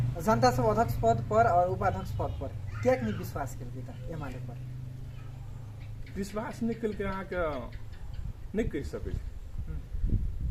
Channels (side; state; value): both; identical; correlation 1.00